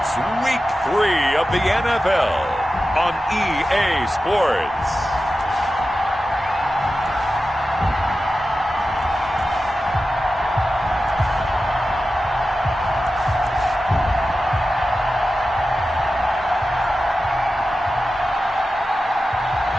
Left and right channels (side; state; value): both; normal; correlation 0.93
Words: Week 3 of the NFL on EA Sports.